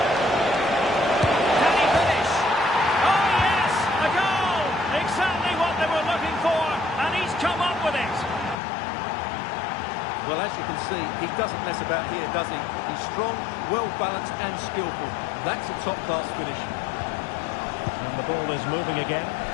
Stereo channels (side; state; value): right; drops out; at 8.6 s